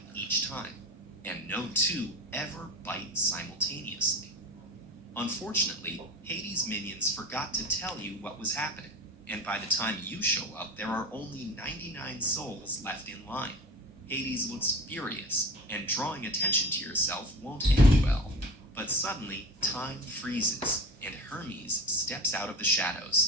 each time, and no two ever bite simultaneously. Unfortunately, Hades' minions forgot to tell you what was happening, and by the time you show up, there are only 99 souls left in line. Hades looks furious, and drawing attention to yourself won't end well. But suddenly, time freezes, and Hermes steps out of the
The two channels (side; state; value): both; normal; correlation 0.33